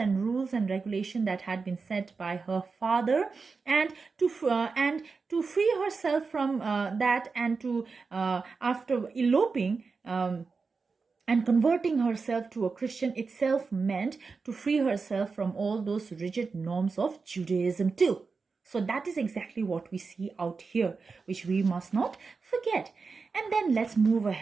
rules and regulation that had been set by her father, and to free herself from that, and to after eloping and converting herself to a Christian itself meant to free herself from all those rigid norms of Judaism too. So that is exactly what we see out here, which we must not forget. And then let's move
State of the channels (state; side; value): quieter; left; 4.6 dB